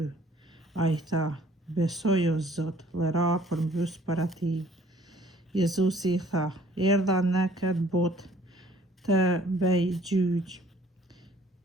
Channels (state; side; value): normal; both; correlation 0.57